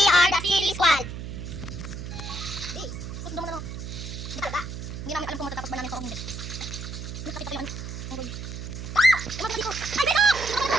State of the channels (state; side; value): noise; right; hum, 8 dB below the sound